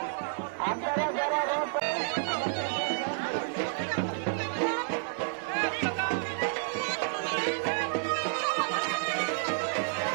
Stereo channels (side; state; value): left; silent; 55 dB below the other